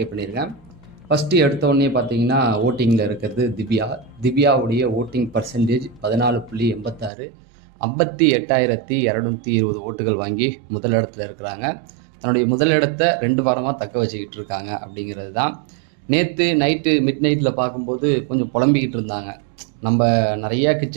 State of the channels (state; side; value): drops out; left; at 7.1 s